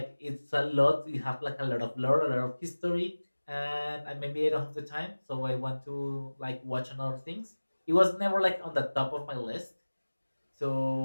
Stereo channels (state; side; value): inverted; both; correlation -1.00